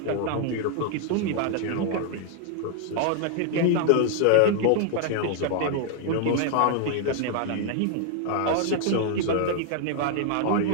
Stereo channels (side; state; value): both; different; correlation 0.00